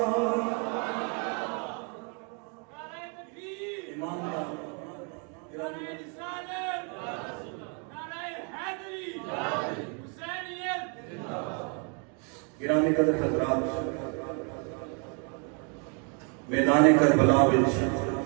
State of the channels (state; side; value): quieter; left; 37.7 dB